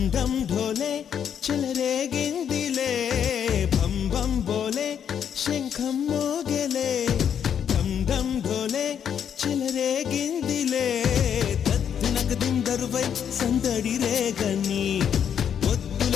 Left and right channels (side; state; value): right; quieter; 8.4 dB